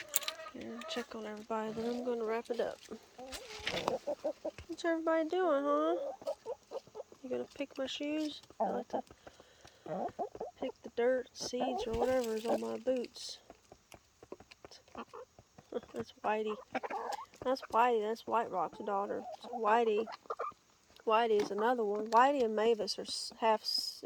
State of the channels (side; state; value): both; identical; correlation 1.00